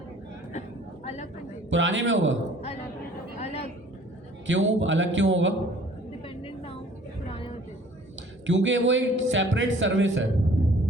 अलग कंटेनर। पुराने में होगा। अलग। क्यों अलग क्यों होगा? डिपेंडेंट ना हो पुराने होते। क्योंकि वो एक सेपरेट सर्विस है।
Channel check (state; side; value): normal; both; correlation 0.53